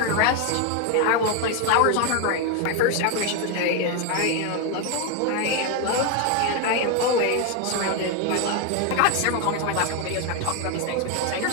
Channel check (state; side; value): different; both; correlation 0.01